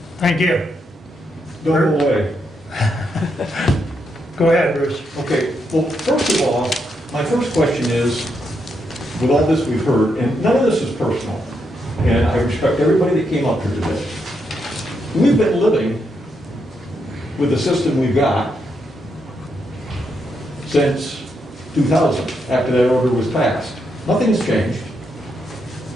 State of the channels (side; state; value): both; normal; correlation 0.80